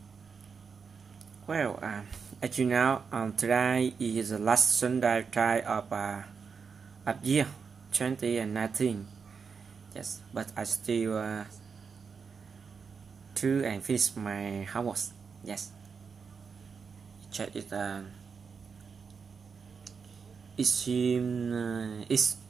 Well, as you know, today is the last Sunday of year 2019. Yes, but I still do and finish my homework. Yes, check it. It seems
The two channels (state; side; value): quieter; left; 5.7 dB